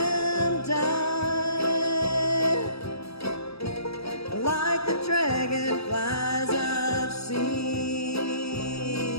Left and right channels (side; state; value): right; late; 0.78 ms